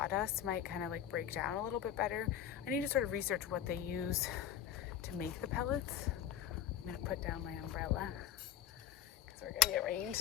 might kind of like break down a little bit better. I need to sort of research what they use to make the pellets. I'm gonna put down my umbrella because we're gonna get rain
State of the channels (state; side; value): quieter; right; 10.3 dB